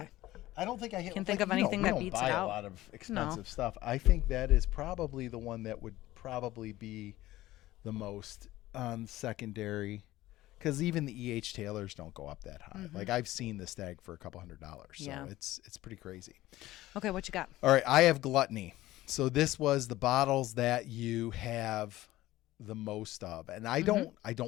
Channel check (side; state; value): right; quieter; 16.4 dB